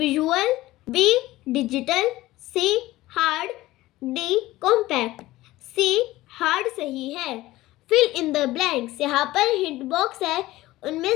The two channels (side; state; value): right; quieter; 17.3 dB